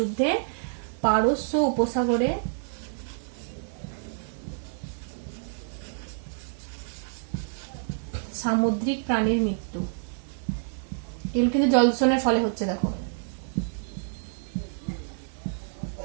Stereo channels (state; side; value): silent; left; digital silence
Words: পারস্য উপসাগরে সামুদ্রিক প্রাণীর মৃত্যু। এগুলো কিন্তু জল দূষণের ফলে হচ্ছে। দেখো,